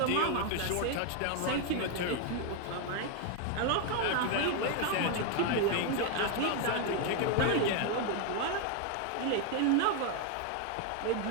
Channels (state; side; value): different; both; correlation 0.01